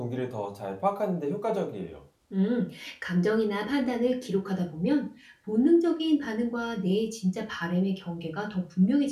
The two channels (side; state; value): both; identical; correlation 1.00